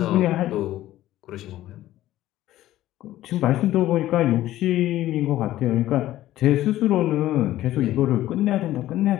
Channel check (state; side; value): quieter; right; 14.5 dB